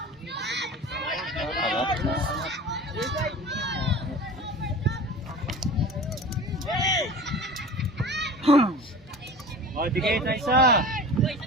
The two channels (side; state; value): both; normal; correlation 0.37